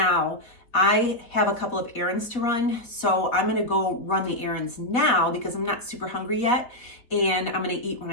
I have a couple of errands to run, so I'm gonna go run the errands now because I'm not super hungry yet, and I'm gonna eat when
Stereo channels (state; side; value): late; right; 4.1 ms